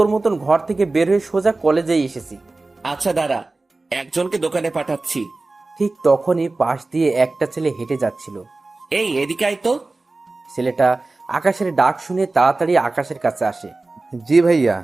মতন ঘর থেকে বের হয়ে সোজা কলেজেই এসেছি। আচ্ছা দাঁড়া, একজনকে দোকানে পাঠাচ্ছি। ঠিক তখনই পাশ দিয়ে একটা ছেলে হেঁটে যাচ্ছিল। এই এদিকে আয় তো। ছেলেটা আকাশের ডাক শুনে তাড়াতাড়ি আকাশের কাছে আসে। জি ভাইয়া।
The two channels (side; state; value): left; quieter; 3.3 dB